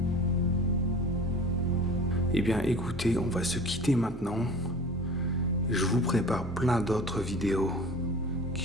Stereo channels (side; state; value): both; normal; correlation 0.40